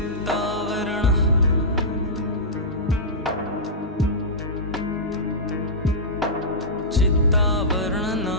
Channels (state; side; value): normal; both; correlation -0.14